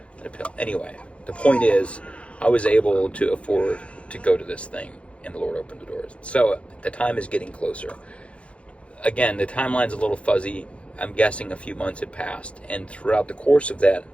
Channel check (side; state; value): right; late; 0.061 ms